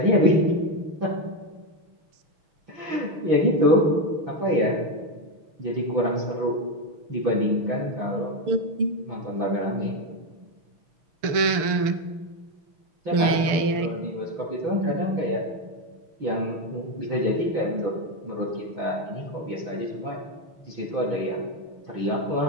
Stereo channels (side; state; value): left; late; 6.8 ms